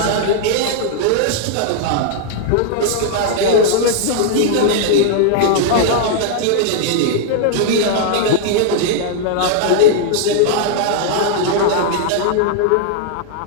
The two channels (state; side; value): different; both; correlation -0.01